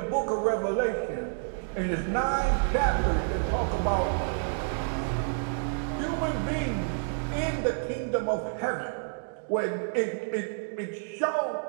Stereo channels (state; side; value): silent; left; digital silence